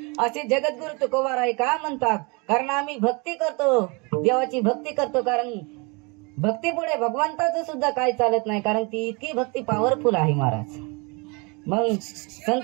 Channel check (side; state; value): left; quieter; 29.7 dB